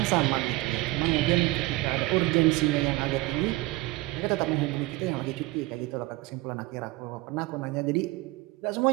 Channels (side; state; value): left; quieter; 20.4 dB